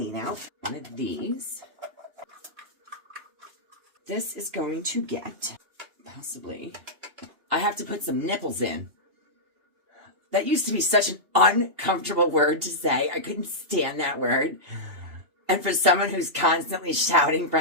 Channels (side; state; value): left; late; 2.8 ms